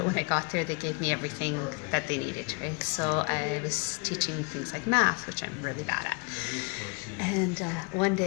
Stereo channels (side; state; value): right; quieter; 32.9 dB